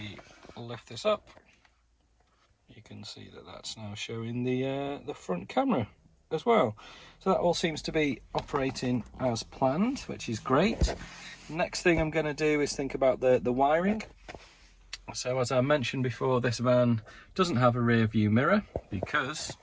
lift this up, you can see that that's now showing the front camera as well. So that all seems to be operating as planned, which is great. Next thing I'm going to do is think about the wiring. So as I mentioned before, this van doesn't have a rear view mirror because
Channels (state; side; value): identical; both; correlation 1.00